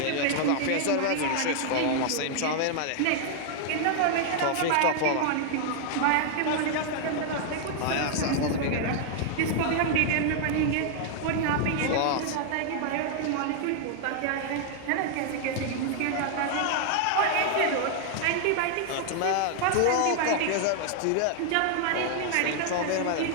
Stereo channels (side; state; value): both; different; correlation 0.00